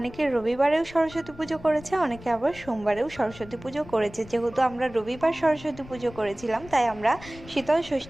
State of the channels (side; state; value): left; noise; rumble, 18 dB below the sound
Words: রবিবারেও সরস্বতী পুজো করেছে, অনেকে আবার সোমবারেও সরস্বতী পুজো করেছে। যেহেতু আমরা রবিবার সরস্বতী পুজো করেছিলাম, তাই আমরা শীতল